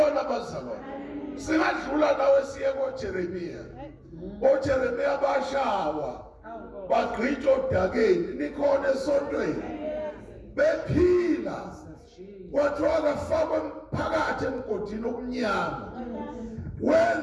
abazalwane. Singadlula nawe siye koJeremiya. OJeremiya bashawa. Bagqitshwa odakeni nikhona esontweni. Bephila. Kwathiwa kafakwe phakathi emgodini omnyama.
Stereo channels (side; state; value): both; identical; correlation 1.00